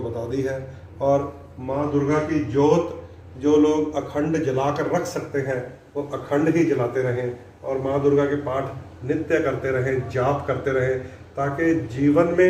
बता दी है। और माँ दुर्गा की जोत जो लोग अखंड जलाकर रख सकते हैं वो अखंड ही जलाते रहें, और माँ दुर्गा के पाठ नित्य करते रहें, जाप करते रहें, ताकि जीवन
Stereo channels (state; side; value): identical; both; correlation 1.00